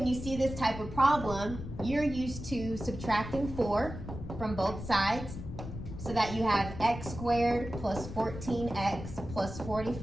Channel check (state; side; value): noise; left; rumble, 9 dB below the sound